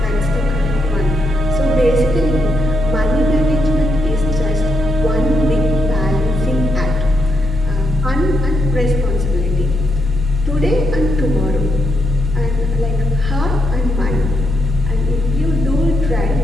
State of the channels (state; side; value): normal; both; correlation 0.80